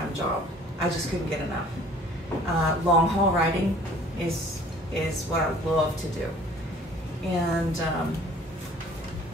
job. I just couldn't get enough. Long haul riding is what I love to do. And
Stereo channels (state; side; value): normal; both; correlation 0.52